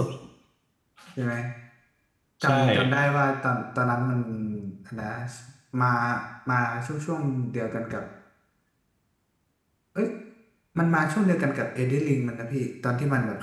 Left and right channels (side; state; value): both; identical; correlation 1.00